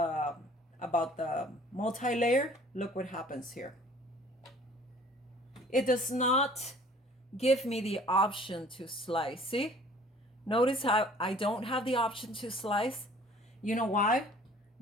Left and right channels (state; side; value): normal; both; correlation 0.52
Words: multi-layer? Look what happens here. It does not give me the option to slice. See? Notice how I don't have the option to slice. You know why?